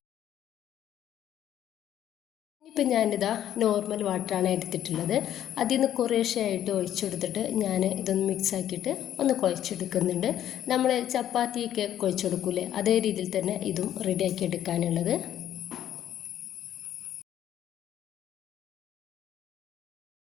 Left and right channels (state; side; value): quieter; right; 11.2 dB